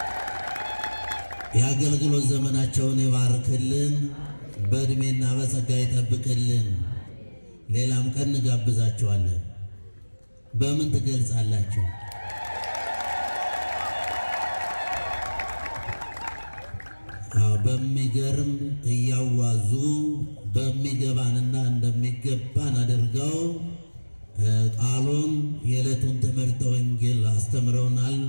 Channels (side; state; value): both; inverted; correlation -1.00